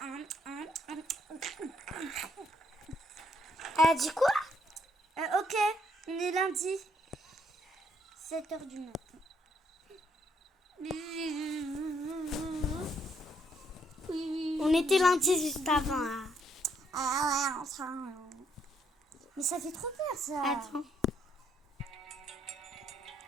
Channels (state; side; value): normal; both; correlation 0.71